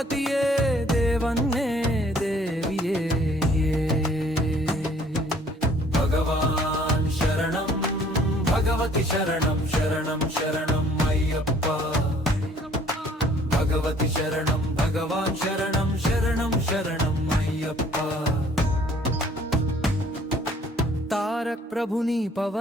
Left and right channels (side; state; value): both; normal; correlation 0.58